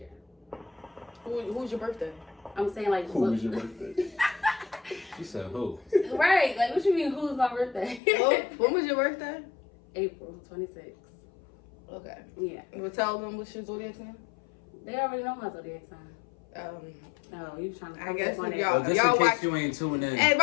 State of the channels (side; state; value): right; drops out; at 8.0 s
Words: Who's your birthday? I'm saying like Who was your birthday? She said who? Right, like what you mean who's my birthday? When was your birthday? April 26th. Okay. Yeah. You will tell them what's your zodiac sign? They already know my zodiac sign. No, you trying to I guess come up on if y'all, it. Just y'all in case watch. you ain't tuning in. Hey,